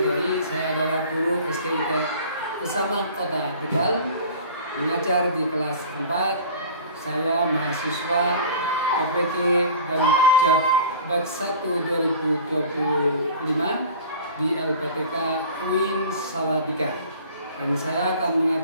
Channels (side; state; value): both; inverted; correlation -0.42